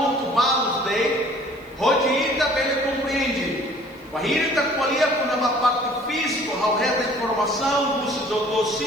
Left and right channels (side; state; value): right; noise; hiss, 30 dB below the sound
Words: balos dele, rodita bem ele compreende. O irita colher na parte física, ao reta informação, o doutor